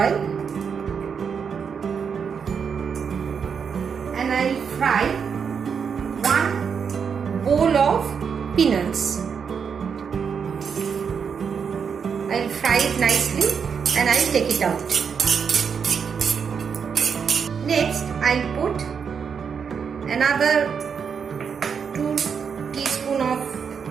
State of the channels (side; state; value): left; quieter; 6.5 dB